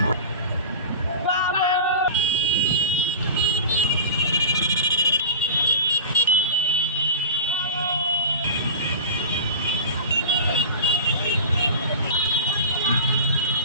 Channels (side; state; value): both; inverted; correlation -0.32